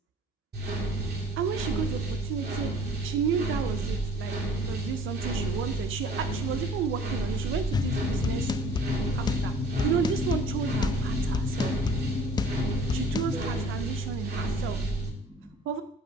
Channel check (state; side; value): normal; both; correlation 0.51